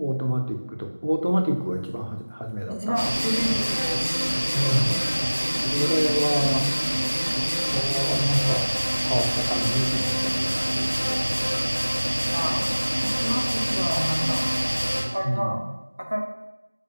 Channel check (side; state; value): both; inverted; correlation -1.00